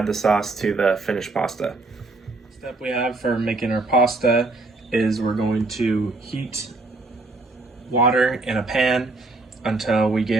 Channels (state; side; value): quieter; left; 3.3 dB